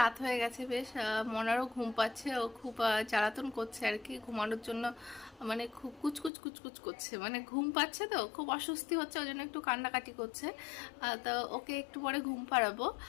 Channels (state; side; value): drops out; right; at 6.3 s